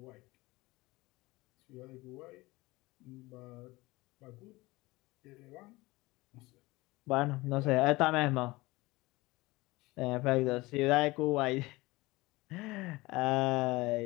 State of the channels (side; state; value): right; quieter; 21.2 dB